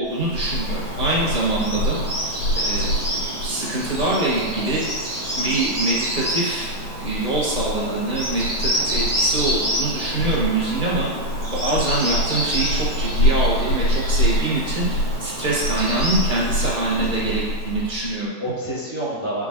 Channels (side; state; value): right; late; 8.9 ms